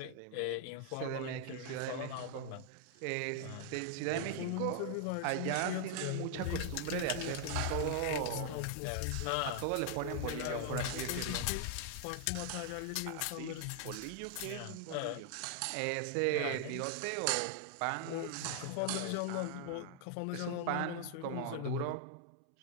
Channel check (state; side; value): different; both; correlation 0.00